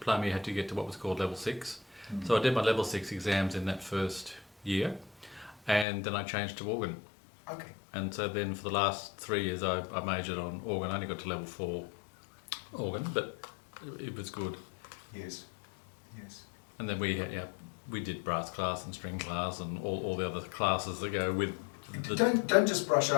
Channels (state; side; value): drops out; right; at 5.9 s